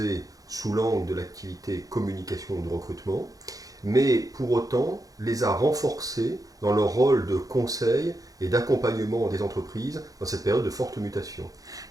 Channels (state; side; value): late; left; 0.17 ms